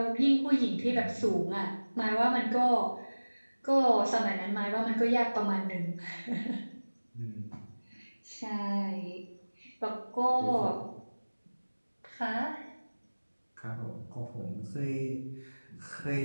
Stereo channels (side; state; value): both; inverted; correlation -1.00